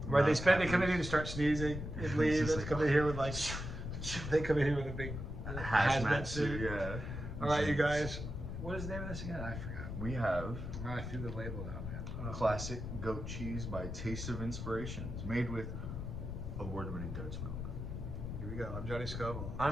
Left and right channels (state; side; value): noise; left; rumble, 6 dB below the sound